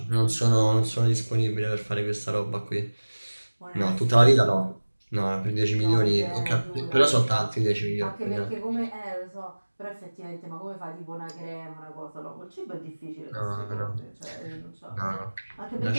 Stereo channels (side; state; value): both; inverted; correlation -1.00